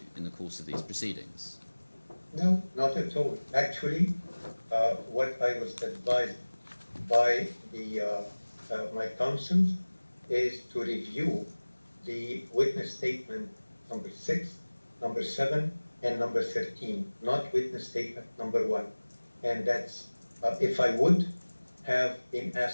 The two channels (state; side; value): inverted; both; correlation -1.00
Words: in the course of these proceedings? No, not at all. Actually, what I was advised by my counsel is to review the witness statement number 6, number 7, and number 13, not witness statement number 1. And that's, if I would have been